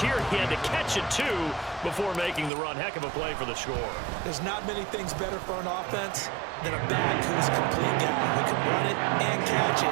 he had to catch it, too, before making the run. Heck of a play for the score. There's not many things better for an offense than a back who's a complete guy who can run it and catch it.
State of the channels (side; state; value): left; drops out; at 2.5 s